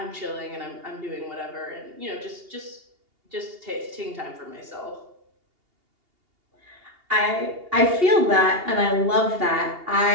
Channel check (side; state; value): left; late; 2.8 ms